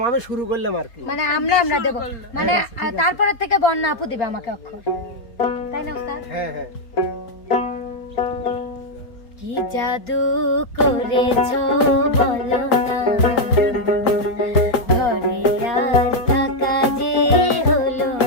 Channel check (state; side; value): late; right; 4.4 ms